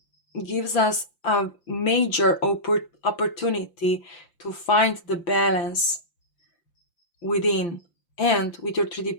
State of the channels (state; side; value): late; right; 5.8 ms